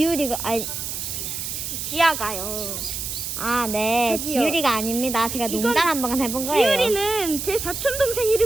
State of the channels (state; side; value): noise; right; hiss, 5 dB below the sound